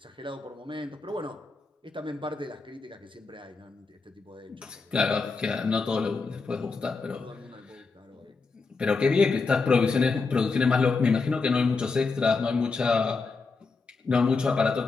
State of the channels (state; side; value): quieter; right; 4.3 dB